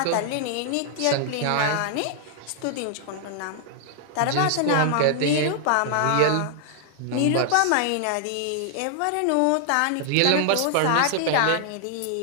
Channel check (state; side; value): different; both; correlation -0.01